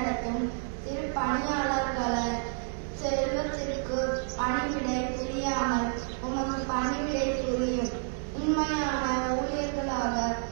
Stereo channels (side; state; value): left; silent; 58 dB below the other